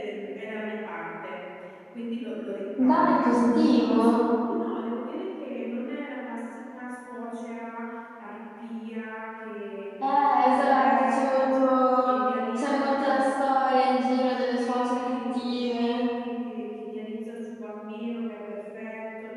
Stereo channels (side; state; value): both; identical; correlation 1.00